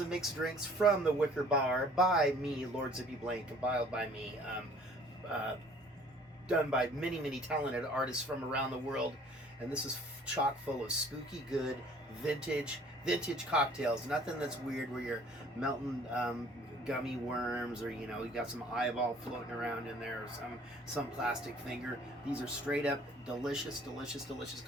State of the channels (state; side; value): normal; both; correlation 0.54